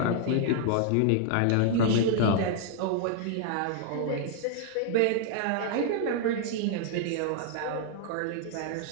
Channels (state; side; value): different; both; correlation 0.00